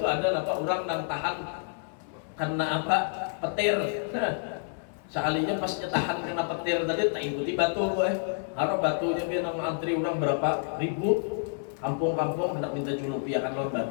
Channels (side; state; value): right; silent; 59 dB below the other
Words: ada apa orang yang tahan karena apa? Petir. Sekalinya pas tahan kena petir tadi tak ikuti batu harap batunya dia nang antri orang berapa ribu. Kampung-kampung hendak minta culupiakan lawan